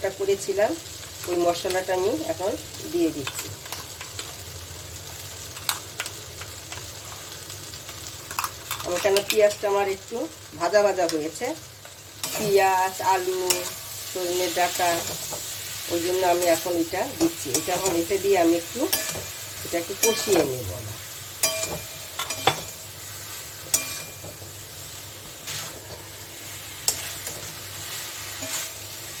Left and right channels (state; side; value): identical; both; correlation 1.00